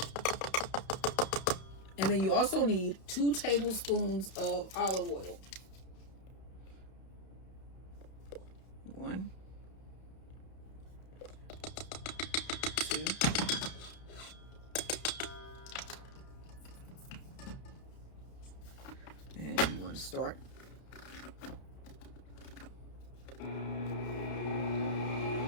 And then you also need 2 tablespoons of olive oil. 1, 2, and you want to start.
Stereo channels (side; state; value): right; late; 31 ms